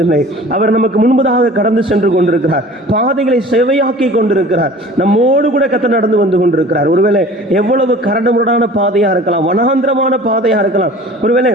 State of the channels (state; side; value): normal; both; correlation 0.44